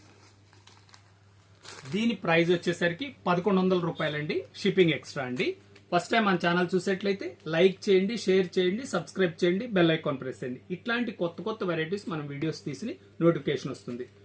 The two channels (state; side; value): identical; both; correlation 1.00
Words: దీని ప్రైస్ వచ్చేసరికి 1100 రూపాయలండి. షిప్పింగ్ ఎక్స్ట్రా అండి. ఫస్ట్ టైం మన ఛానల్ చూసేట్లయితే లైక్ చేయండి, షేర్ చేయండి, సబ్స్క్రైబ్ చేయండి, బెల్ ఐకాన్ ప్రెస్ చేయండి. ఇట్లాంటి కొత్త కొత్త వెరైటీస్ మనం వీడియోస్ తీసి నోటిఫికేషన్ వస్తుంది.